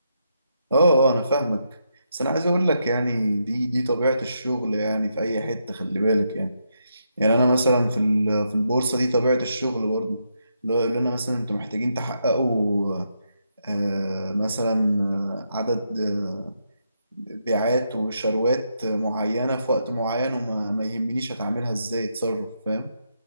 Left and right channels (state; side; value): inverted; both; correlation -0.81